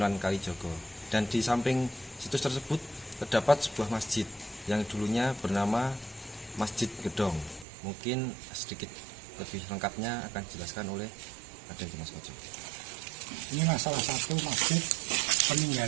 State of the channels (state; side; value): drops out; left; at 7.7 s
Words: Kalijogo. Dan di samping situs tersebut terdapat sebuah masjid yang dulunya bernama Masjid Gedong. Mungkin sedikit lebih lengkapnya akan dijelaskan oleh Raden Dimas Koco. Ini salah satu masjid